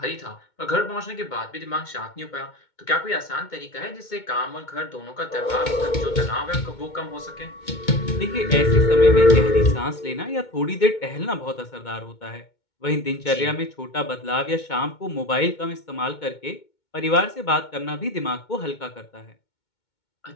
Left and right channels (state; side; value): late; right; 2.2 ms